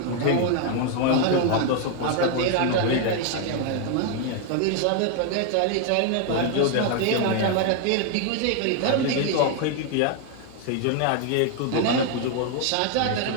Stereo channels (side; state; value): both; different; correlation 0.00